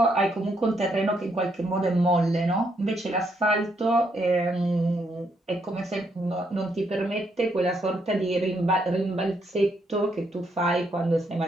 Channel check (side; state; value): both; normal; correlation 0.75